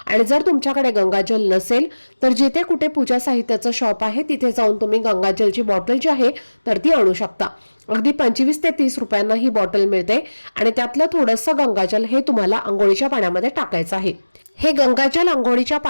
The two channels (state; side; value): inverted; both; correlation -1.00